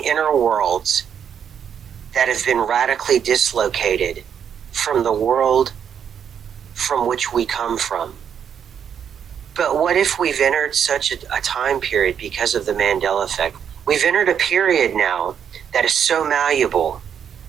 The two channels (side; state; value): left; quieter; 8.2 dB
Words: inner worlds that have been radically dislocated from the world from which we come from? But what if we've entered such a time period because of the Mandela effect? We've entered a period now that is so malleable